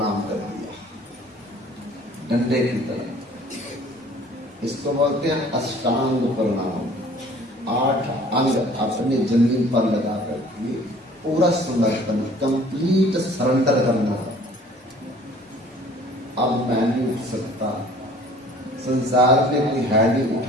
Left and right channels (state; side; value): normal; both; correlation 0.52